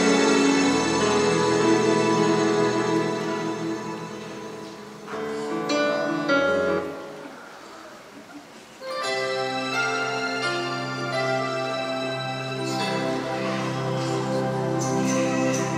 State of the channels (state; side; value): identical; both; correlation 1.00